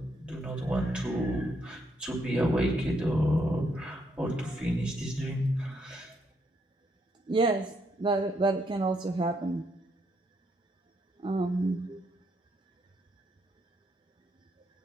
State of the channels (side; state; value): both; normal; correlation 0.75